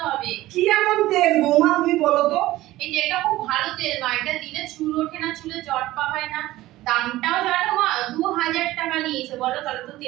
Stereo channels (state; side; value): quieter; left; 16.6 dB